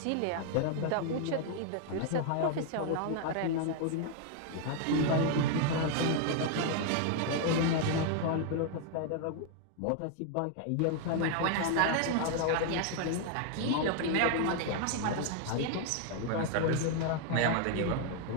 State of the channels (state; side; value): different; both; correlation 0.00